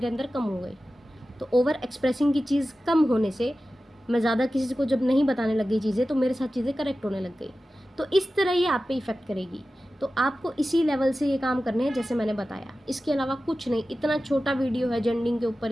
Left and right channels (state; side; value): normal; both; correlation 0.95